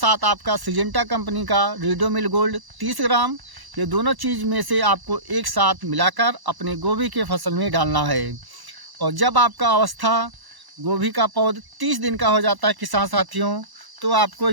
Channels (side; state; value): left; late; 1.0 ms